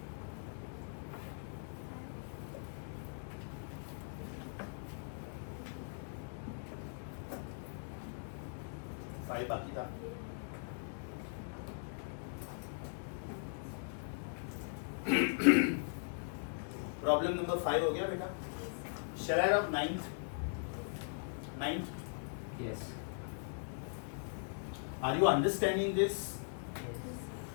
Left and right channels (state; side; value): silent; right; digital silence